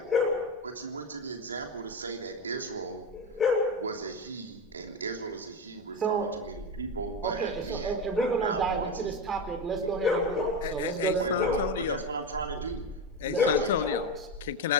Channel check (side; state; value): both; normal; correlation 0.17